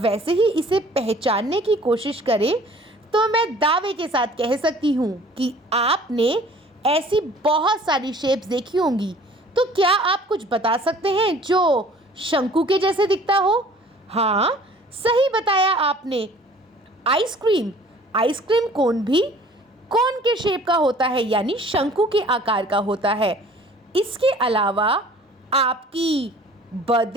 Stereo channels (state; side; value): normal; both; correlation 0.51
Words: ही इसे पहचानने की कोशिश करें तो मैं दावे के साथ कह सकती हूँ कि आपने ऐसी बहुत सारी शेप्स देखी होंगी। तो क्या आप कुछ बता सकते हैं जो शंकु के जैसे दिखता हो? हाँ, सही बताया आपने, आइसक्रीम। आइसक्रीम कोन भी कोन के शेप का होता है, यानी शंकु के आकार का होता है। इसके अलावा आपकी